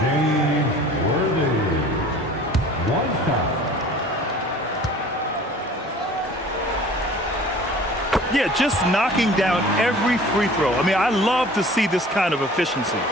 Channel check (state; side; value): normal; both; correlation 0.46